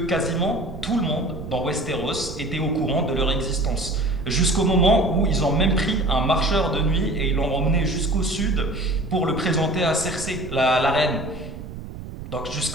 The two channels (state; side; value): noise; right; rumble, 11 dB below the sound